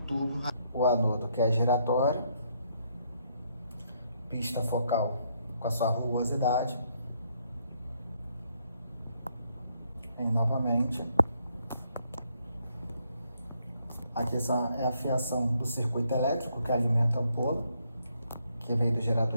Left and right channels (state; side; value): inverted; both; correlation -0.72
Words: O anodo, que é giratório, pista focal com a sua rugosidade. E novamente. Aqui é a fiação do circuito elétrico que alimenta a ampola, que veio do